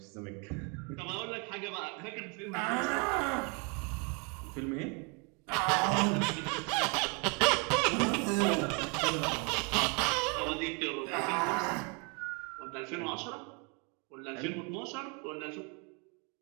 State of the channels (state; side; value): quieter; left; 33.4 dB